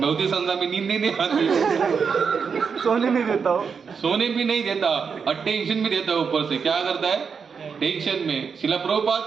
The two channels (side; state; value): left; quieter; 6.0 dB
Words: नहीं आती, सोने नहीं देता हो। सोने भी नहीं देता और टेंशन भी देता है। ऊपर से क्या करता है, टेंशन में। शिला प्रभुपाद